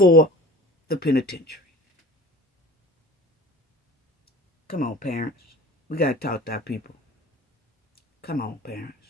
the penitentiary. Come on, parents. We got to talk to our people. Come on, parents.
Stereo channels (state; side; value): normal; both; correlation 0.41